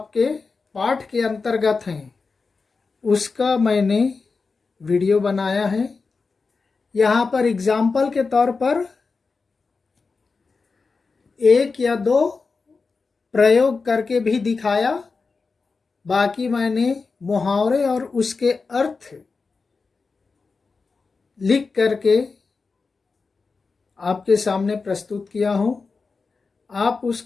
पाठ के अंतर्गत हैं उसका मैंने वीडियो बनाया है। यहाँ पर एग्जाम्पल के तौर पर एक या दो प्रयोग करके भी दिखाया, बाकी मैंने मुहावरे और उसके अर्थ लिख करके आपके सामने प्रस्तुत किया हूँ। आप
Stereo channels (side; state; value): right; quieter; 4.4 dB